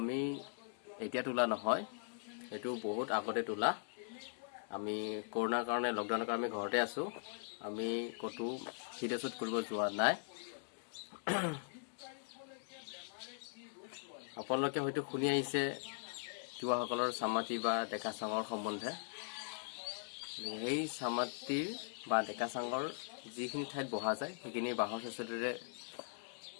এতিয়া তোলা নহয় এটো বহুত আগতে তোলা আমি কৰোনাৰ কাৰণে লকডাউনৰ কাৰণে আমি ঘৰতে আছো আমি কতো ভিডিঅ' শ্বুট কৰিব যোৱা নাই আপোনালোকে হয়তো শুনি আহিছে তিৱাসকলৰ সামাতি বা ডেকা চাঙৰ সম্বন্ধে এই সামাতিৰ বা ডেকা চাঙৰ যিখিনি ঠাইত বহা যায় সেইখিনি বাহৰ চেচলিৰে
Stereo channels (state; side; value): silent; right; digital silence